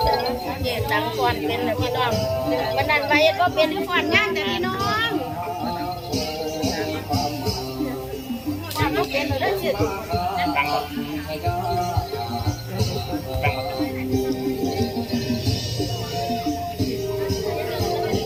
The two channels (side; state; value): both; identical; correlation 1.00